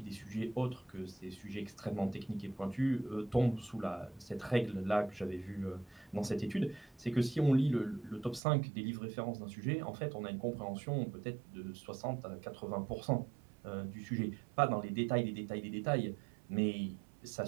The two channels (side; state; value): left; drops out; at 8.4 s